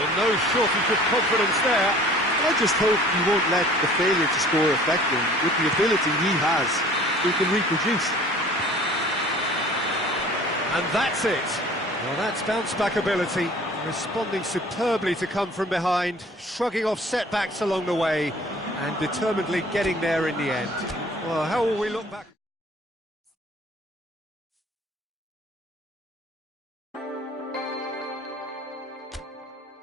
no shortage of confidence there. I just hope he won't let the failure to score affect him. With the ability he has, he can reproduce. And that's it. Well, that's bounce-back ability, responding superbly to come from behind, shrugging off setbacks along the way, and determinedly getting there in the end. Well, how will we look back?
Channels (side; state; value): both; normal; correlation 0.49